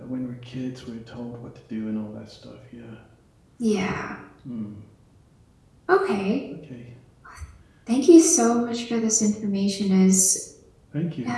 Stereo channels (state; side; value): identical; both; correlation 1.00